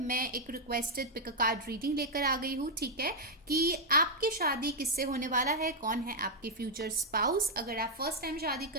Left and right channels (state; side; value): normal; both; correlation -0.02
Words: एक requested pick a card reading लेकर आ गई हूँ। ठीक है, कि आपकी शादी किससे होने वाला है, कौन है आपके फ्यूचर स्पाउस। अगर आप फर्स्ट टाइम शादी